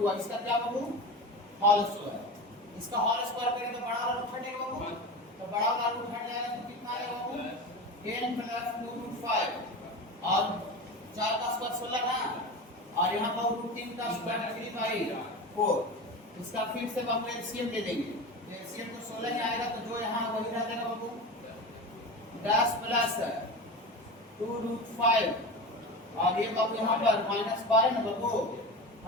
इसका क्या बाबू होल स्क्वायर, इसका होल स्क्वायर करेंगे तो बड़ा वाला हटेगा बाबू, तो बड़ा वाला रूट हट जाएगा तो कितना आएगा बाबू, 10 + 2√5, और 4 का स्क्वायर 16 ना, और यहाँ पर √3 का स्क्वायर 3/4, इसका फिर से बाबू एलसीएम ले लेंगे, एलसीएम तो 16 ही आएगा, तो जो यहाँ वही रह जाएगा बाबू 10 + 2√5, और ये बाबू यहाँ पर -12 ना बाबू,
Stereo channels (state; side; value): normal; both; correlation 0.27